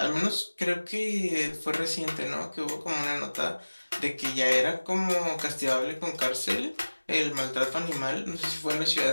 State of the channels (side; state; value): both; inverted; correlation -1.00